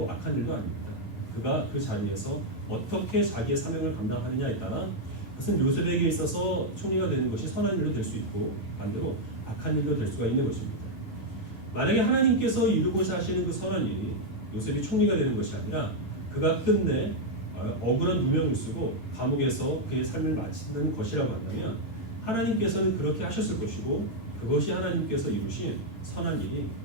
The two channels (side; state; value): right; late; 8.9 ms